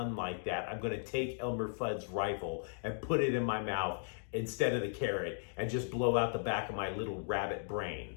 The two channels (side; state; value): right; silent; digital silence